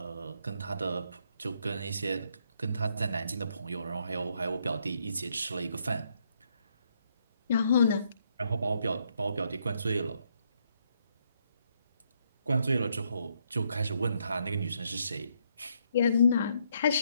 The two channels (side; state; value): both; inverted; correlation -0.74